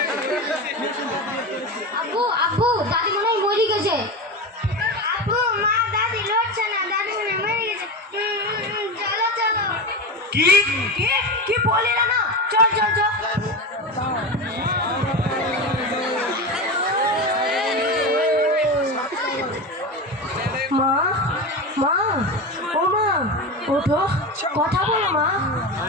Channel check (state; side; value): normal; both; correlation 0.22